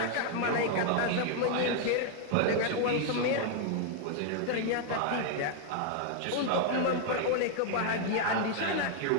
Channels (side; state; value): both; different; correlation 0.00